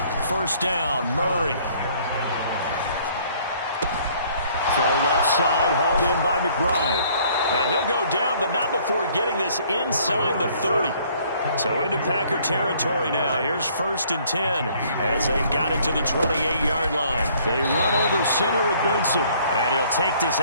First down, Murray. Throw left side, hauled in by McBride. And he'll go down, but not before getting this inside the 30. So into Packer territory now. Here's 1st and 10 as they've got it to the 28-yard line. They run over center with Benson. And he'll take this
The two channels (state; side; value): inverted; both; correlation -0.60